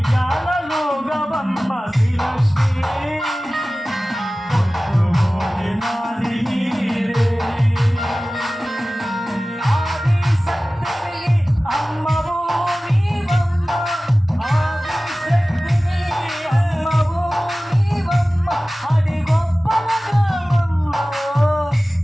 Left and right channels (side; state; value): both; normal; correlation 0.97